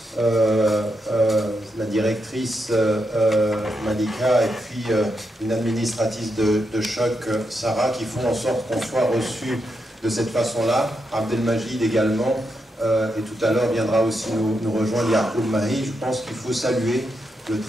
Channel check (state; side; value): normal; both; correlation 0.83